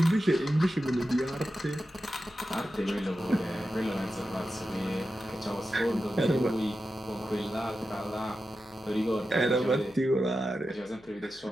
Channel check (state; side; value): noise; left; hum, 28 dB below the sound